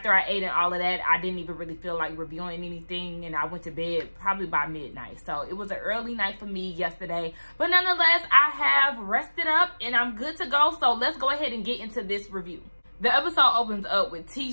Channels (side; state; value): both; inverted; correlation -1.00